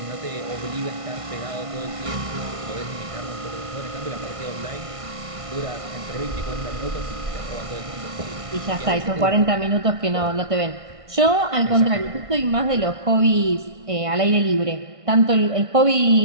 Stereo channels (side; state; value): left; late; 1.5 ms